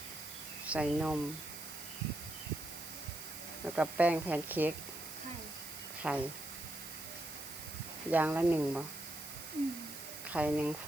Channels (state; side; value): noise; right; hiss, 10 dB below the sound